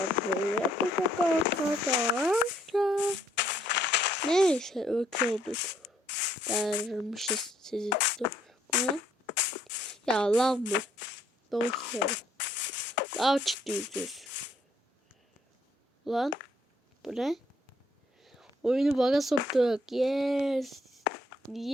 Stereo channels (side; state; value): both; normal; correlation 0.67